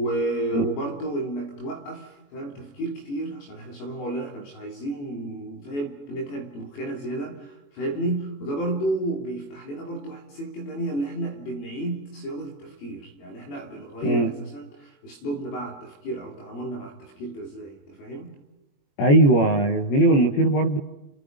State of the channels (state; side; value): late; right; 21 ms